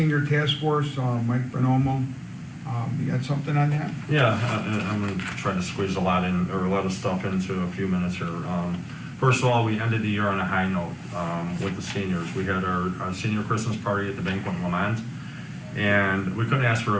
task force, Mike Bonomo, you got something on that? Yeah, I'm gonna try to squeeze a lot of stuff into a few minutes here. First of all, we ended the year on a high note with the seniors. We had our senior Christmas party at the Banquet in Lamont, and we couldn't ask for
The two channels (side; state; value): both; identical; correlation 1.00